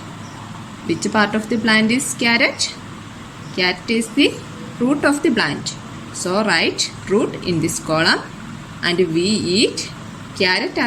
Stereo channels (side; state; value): both; identical; correlation 1.00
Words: Which part of the plant is carrot? Carrot is the root of the plant. So, write root in this column, and we eat carrot